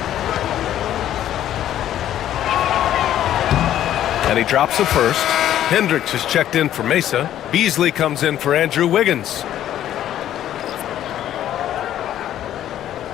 And he drops the first. Hendricks is checked in for Mesa. Beasley comes in for Andrew Wiggins.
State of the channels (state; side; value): quieter; right; 11.7 dB